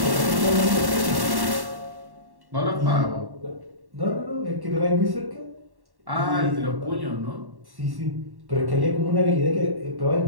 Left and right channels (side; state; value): left; late; 1.1 ms